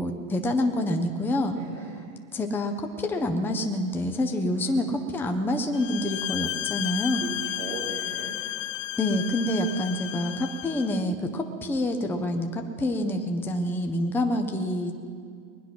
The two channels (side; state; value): both; normal; correlation 0.58